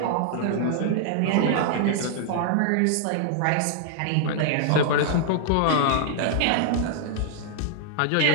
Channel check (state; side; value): different; both; correlation -0.01